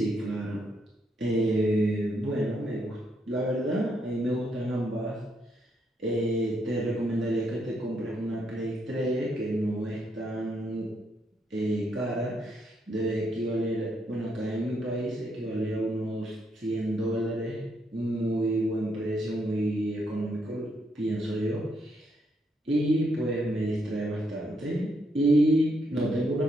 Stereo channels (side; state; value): both; normal; correlation 0.76